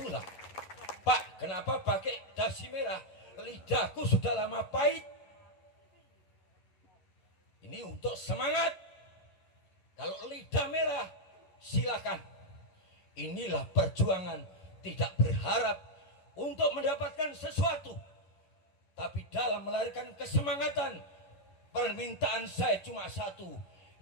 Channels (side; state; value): right; late; 11 ms